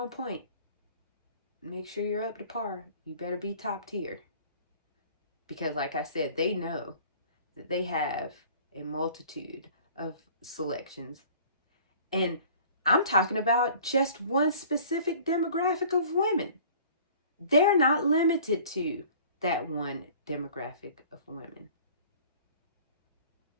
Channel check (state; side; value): inverted; both; correlation -0.49